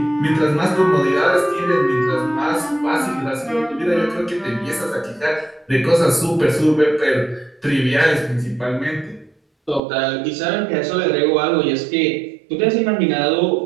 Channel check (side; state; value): left; drops out; at 9.8 s